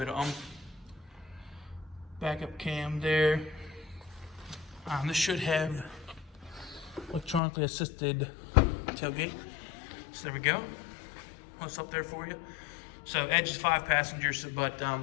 of backup cam there. This should have electronically assisted tailgate. So there we go. What's up there for you? So Edge is 5 passengers, but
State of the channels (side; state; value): right; drops out; at 7.4 s